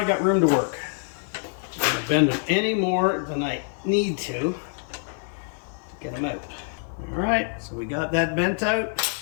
got room to work. I'm gonna bend them any more than I need to get them out. All right, so we got that bent out.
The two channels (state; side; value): silent; right; 61 dB below the other